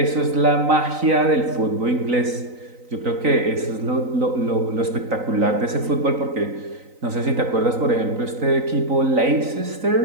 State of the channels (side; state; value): left; late; 3.9 ms